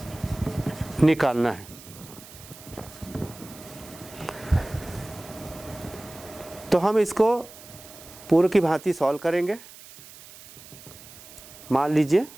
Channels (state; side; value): noise; right; hiss, 18 dB below the sound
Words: निकालना है। तो हम इसको पूर्व की भांति सॉल्व करेंगे। मान लीजिए